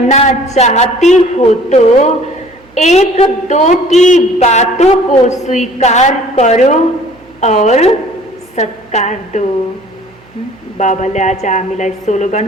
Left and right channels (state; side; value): noise; right; hum, 30 dB below the sound